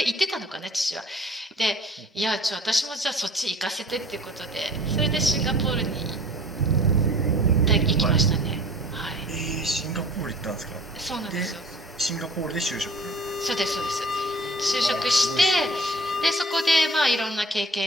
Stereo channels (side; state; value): both; normal; correlation 0.47